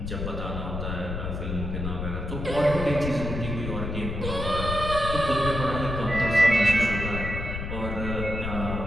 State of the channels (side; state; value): left; noise; rumble, 4 dB below the sound